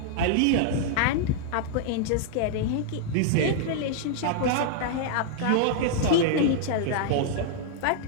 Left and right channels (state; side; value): different; both; correlation -0.01